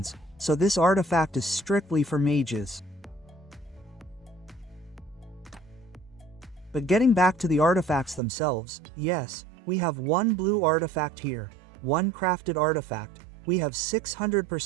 so this artifact is strictly for mages. But getting back to the artifacts themselves, yes, we have one blue artifact here, one crafted artifact, we have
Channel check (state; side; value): drops out; left; at 8.2 s